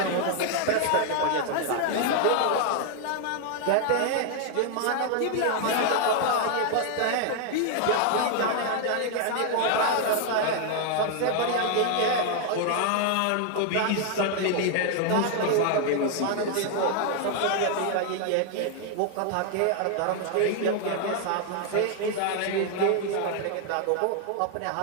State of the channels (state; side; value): different; both; correlation 0.00